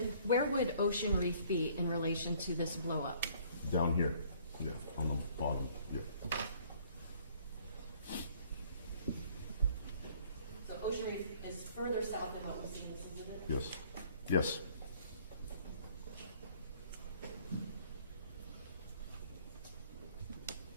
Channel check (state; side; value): inverted; both; correlation -0.58